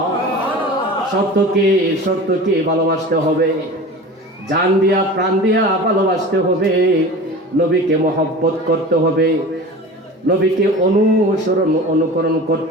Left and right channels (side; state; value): both; normal; correlation 0.35